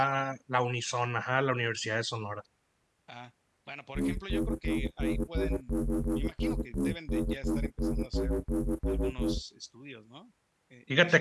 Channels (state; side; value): identical; both; correlation 1.00